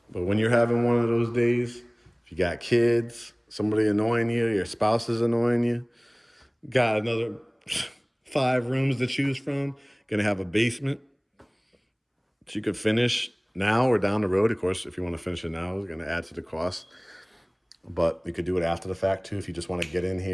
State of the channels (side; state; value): both; identical; correlation 1.00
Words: but when you're having one of those days, if you got kids, somebody annoying you, your spouse is annoying you, got another 5 rooms to choose from, gonna have a basement that you could finish now or down the road. Of course, if you want to finish it now, it's gonna add to the cost. But you could do it after the fact too, if you just want to get in